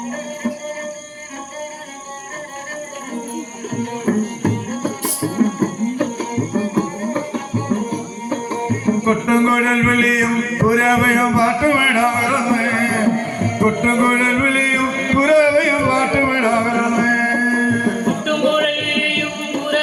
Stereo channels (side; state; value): both; identical; correlation 1.00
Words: കൊട്ടുംകുഴൽ വിളിയും പുരവയും പാട്ടുമിടാകരുന്നേ, കൊട്ടുംകുഴൽ വിളിയും പുരവയും പാട്ടുമിടാകരുന്നേ,